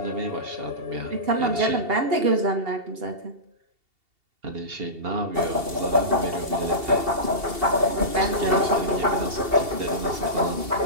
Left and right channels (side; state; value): left; late; 2.7 ms